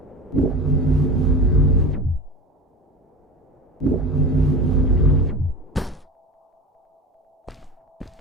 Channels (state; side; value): normal; both; correlation 0.31